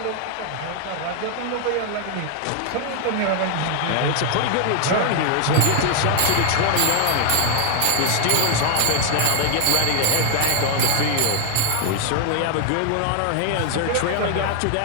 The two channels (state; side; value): different; both; correlation 0.00